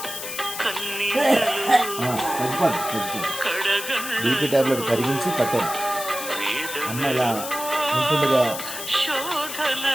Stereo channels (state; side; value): noise; left; hiss, 7 dB below the sound